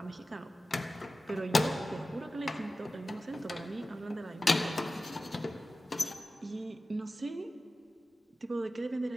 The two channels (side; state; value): both; normal; correlation 0.94